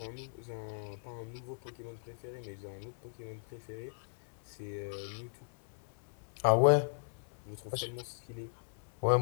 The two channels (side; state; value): right; silent; 53 dB below the other